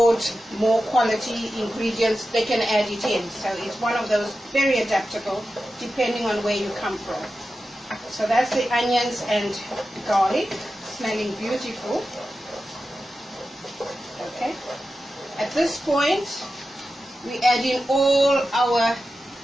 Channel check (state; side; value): normal; both; correlation 0.92